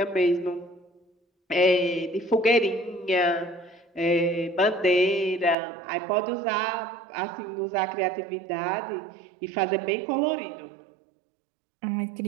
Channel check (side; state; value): left; drops out; at 5.6 s